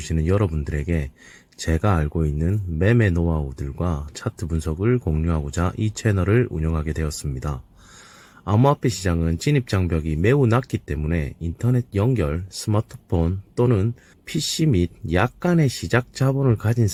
여러분들에게 제가 알고 있는 매매 노하우들과 차트 분석을 공유하고자 이 채널을 운영하게 되었습니다. 암호화폐 시장은 진입장벽이 매우 낮기 때문에 인터넷 연결, 스마트폰 또는 PC 및 약간의 시작 자본을 가진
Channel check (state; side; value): identical; both; correlation 1.00